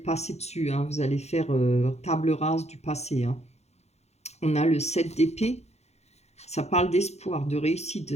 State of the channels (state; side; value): late; right; 0.31 ms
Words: dessus, vous allez faire table rase du passé. On a le 7 d'épée. Ça parle d'espoir, de réussite,